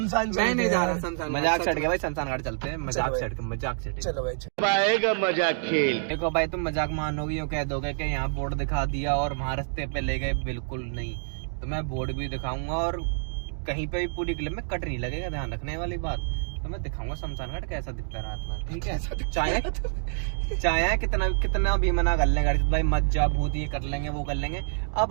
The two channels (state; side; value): silent; left; digital silence